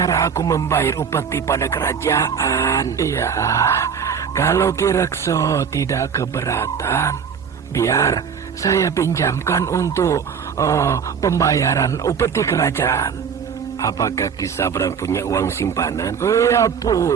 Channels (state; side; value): quieter; left; 6.8 dB